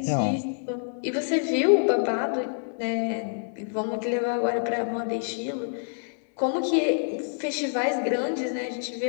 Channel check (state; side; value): silent; right; digital silence